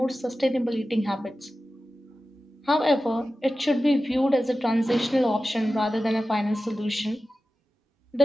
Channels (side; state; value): both; normal; correlation 0.94